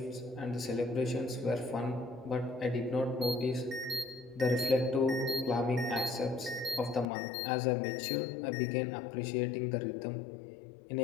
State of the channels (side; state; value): right; drops out; at 7.1 s